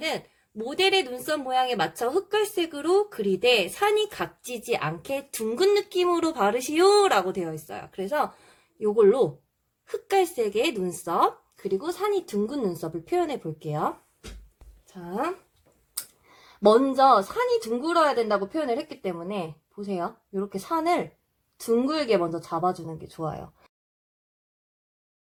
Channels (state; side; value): identical; both; correlation 1.00